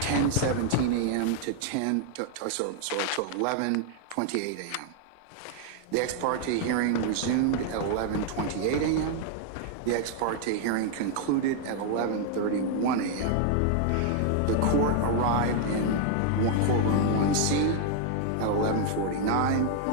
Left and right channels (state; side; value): different; both; correlation 0.00